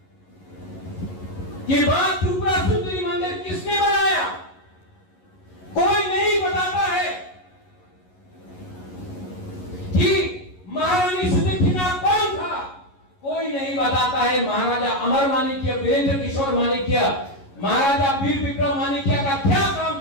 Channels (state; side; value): late; right; 11 ms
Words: कि मां त्रिपुरा सुंदरी मंदिर किसने बनाया, कोई नहीं बताता है कि महारानी सुदक्षिणा कौन था, कोई नहीं बताता है महाराजा अमर माणिक्य, वीरेंद्र किशोर माणिक्य, महाराजा वीर विक्रम माणिक्य का क्या काम